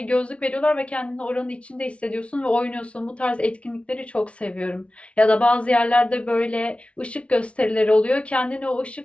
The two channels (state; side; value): late; right; 0.061 ms